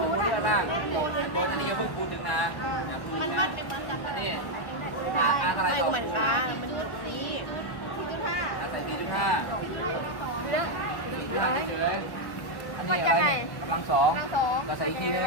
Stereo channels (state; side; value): late; right; 1.1 ms